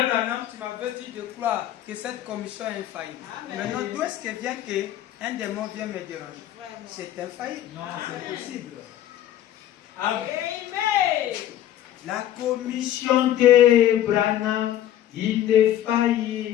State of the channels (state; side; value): quieter; right; 12.0 dB